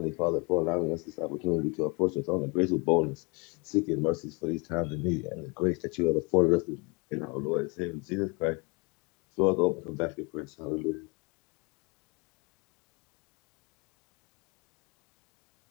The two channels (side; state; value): right; quieter; 30.4 dB